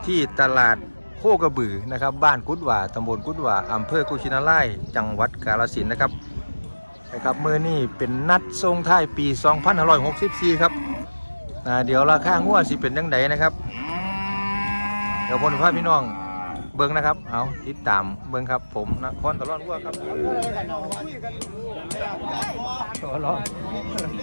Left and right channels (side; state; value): both; inverted; correlation -1.00